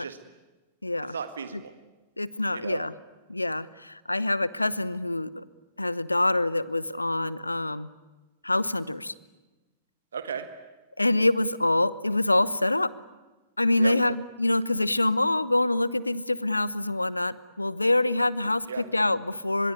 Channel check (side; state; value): both; inverted; correlation -0.96